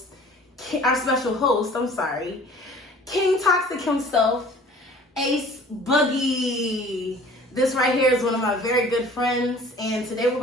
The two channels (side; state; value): both; normal; correlation 0.49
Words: King Toxic himself, Ace Boogie. This right here is one of my very good friends. And today we're